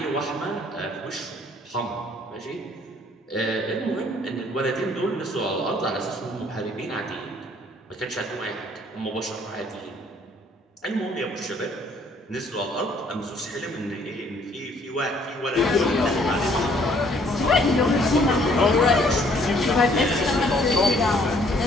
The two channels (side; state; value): both; normal; correlation 0.62